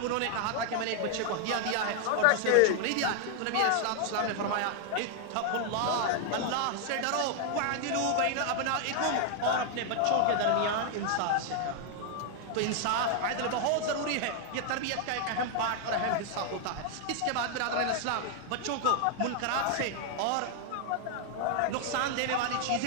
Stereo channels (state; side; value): different; both; correlation 0.00